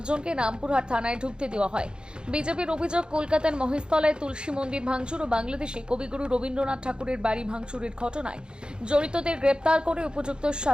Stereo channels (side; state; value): left; late; 0.050 ms